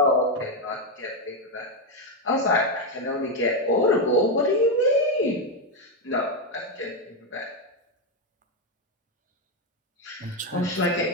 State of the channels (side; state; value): both; normal; correlation 0.05